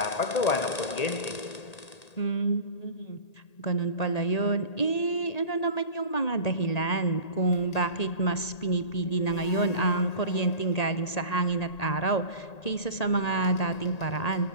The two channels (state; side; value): late; right; 1.8 ms